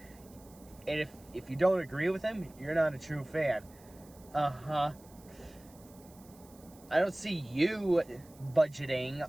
And if you don't agree with him, you're not a true fan. I don't see you budgeting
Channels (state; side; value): noise; right; hiss, 25 dB below the sound